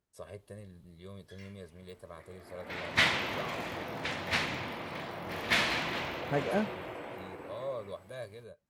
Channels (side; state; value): both; identical; correlation 1.00